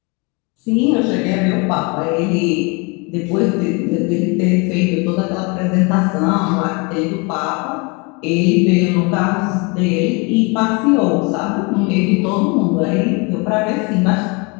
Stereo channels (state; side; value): quieter; right; 29.3 dB